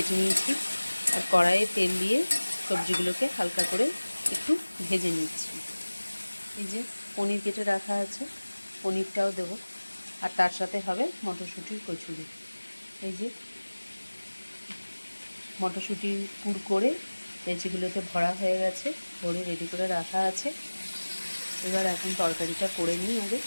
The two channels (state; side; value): inverted; both; correlation -1.00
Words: নিয়েছি আর কড়াইয়ে তেল দিয়ে সবজিগুলোকে হালকা করে একটু ভেজে নিচ্ছি। এই যে পনির কেটে রাখা আছে, পনিরটাও দেবো, আর তার সাথে হবে মটরশুঁটির কচুরি। এই যে মটরশুঁটি পুর করে লেচিগুলোতে ভরা হয়ে গেছে, ভরে রেডি করে রাখা আছে। এবার এখন তরকারিটা করে নিই আগে,